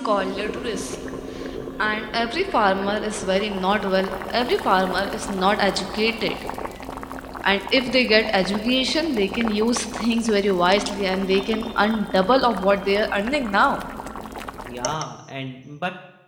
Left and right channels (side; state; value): both; identical; correlation 1.00